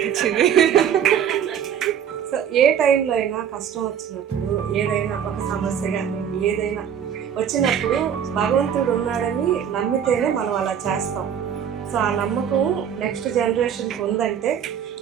సో ఏ టైంలో అయినా కష్టం వచ్చినప్పుడు, ఏదైనా ఒక సమస్య కానీ ఏదైనా వచ్చినప్పుడు భగవంతుడు ఉన్నాడని నమ్మితేనే మనం అలా చేస్తాం. సో ఆ నమ్మకం నెక్స్ట్ జనరేషన్కి ఉందంటే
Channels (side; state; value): left; quieter; 8.6 dB